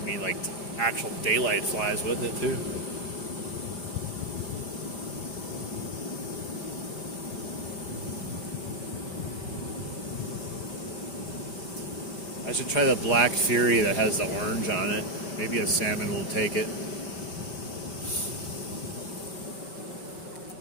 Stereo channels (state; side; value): late; right; 4.9 ms